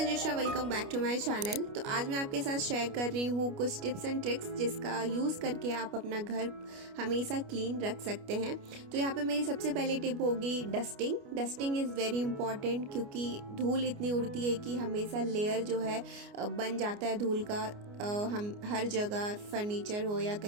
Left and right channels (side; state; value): left; late; 29 ms